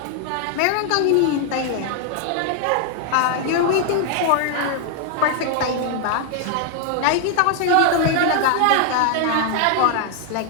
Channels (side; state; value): both; different; correlation 0.00